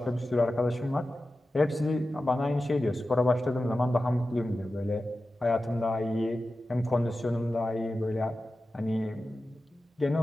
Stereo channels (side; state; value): both; normal; correlation 0.93